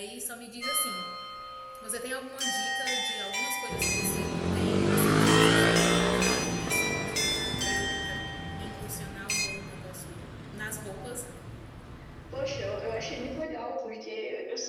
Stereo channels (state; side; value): identical; both; correlation 1.00